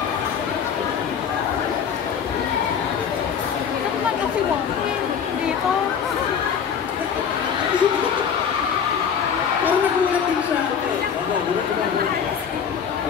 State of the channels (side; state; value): right; quieter; 7.4 dB